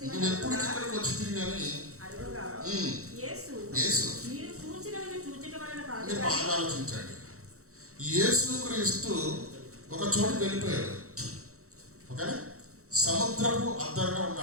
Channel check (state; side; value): late; left; 0.64 ms